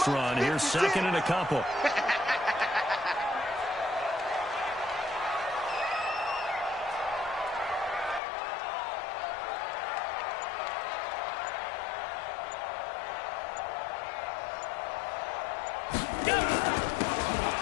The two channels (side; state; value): right; drops out; at 8.2 s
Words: run. Here's second and a couple.